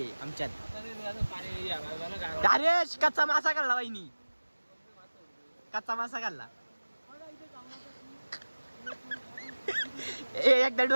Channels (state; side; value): inverted; both; correlation -1.00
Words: आहे आमच्यात. अरे कच्चा मासा खाल्ला बाईनी. कच्चा मासा खाल्ला. एकदा